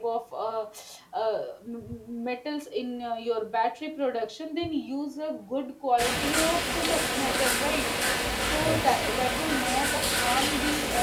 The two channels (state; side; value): identical; both; correlation 1.00